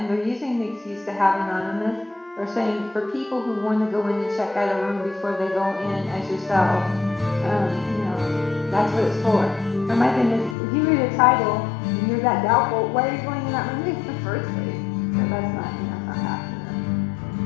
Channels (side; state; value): right; drops out; at 10.6 s